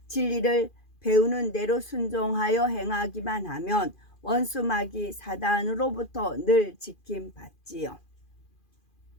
진리를 배우는 대로 순종하여 행하기만 하면 원수마귀 사단으로부터 늘 지킴받지요.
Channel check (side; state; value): right; late; 2.4 ms